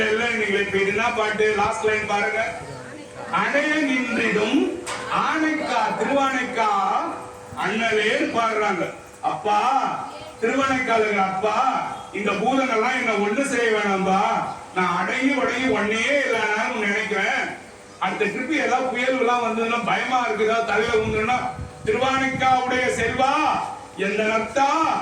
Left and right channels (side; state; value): both; identical; correlation 1.00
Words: இல்ல, நீங்க இப்ப என்ன பாட்டு? லாஸ்ட் லைன் பாருங்க. அடைய நின்றிடும் ஆணைக்கா, திருவானைக்கா அண்ணலே பாடுறாங்க. அப்பா திருவனைக்காலுங்க, அப்பா இந்த பூதங்கள்லாம் என்ன ஒண்ணு செய்ய வேணாம்பா, நான் அடையும் ஒன்னே இல்லைன்னு நினைக்கிறேன். அடுத்த ட்ரிப் ஏதாவது புயல் எல்லாம் வந்ததுன்னா பயமா இருக்குதா, தலையில உண்டுன்னா, திருவானைக்காவுடைய செல்வா, எந்த நத்தா,